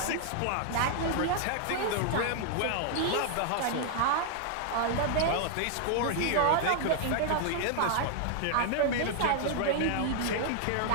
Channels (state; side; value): different; both; correlation 0.00